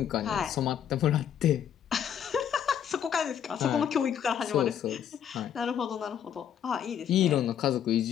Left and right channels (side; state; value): right; quieter; 9.0 dB